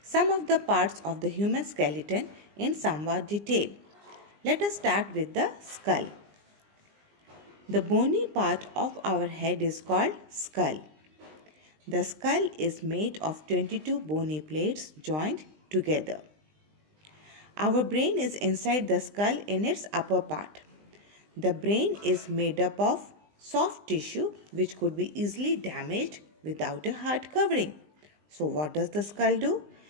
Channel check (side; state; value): left; late; 20 ms